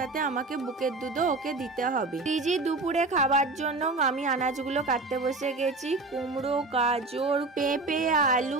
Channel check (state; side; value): quieter; left; 3.4 dB